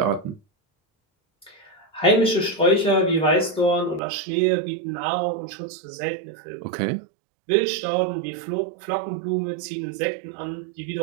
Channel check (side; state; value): left; drops out; at 4.0 s